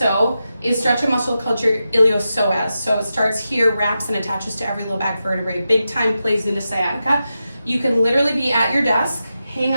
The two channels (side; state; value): both; inverted; correlation -0.90